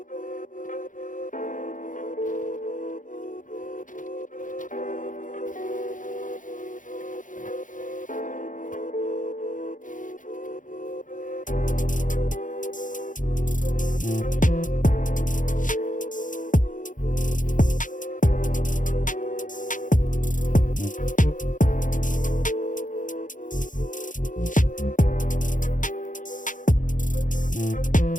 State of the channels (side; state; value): right; late; 0.38 ms